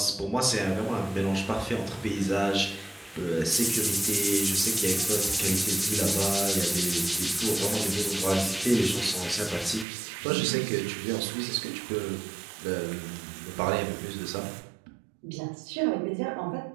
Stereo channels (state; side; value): drops out; left; at 9.9 s